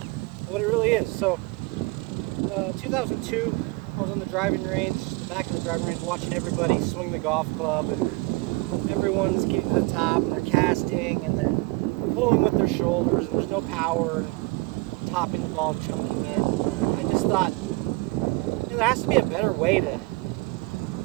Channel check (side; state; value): left; quieter; 24.1 dB